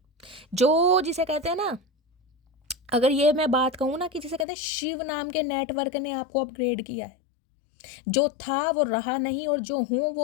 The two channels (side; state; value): right; drops out; at 4.5 s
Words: जो जिसे कहते हैं ना, अगर ये मैं बात कहूँ ना कि जिसे कहते हैं शिव नाम के नेटवर्क ने आपको अपग्रेड किया है। जो था वो रहा नहीं, और जो हूँ